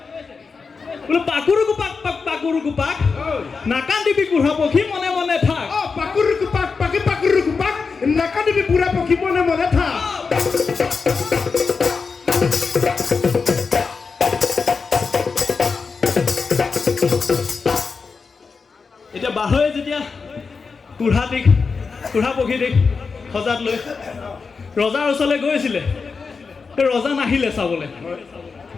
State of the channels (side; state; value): right; quieter; 4.9 dB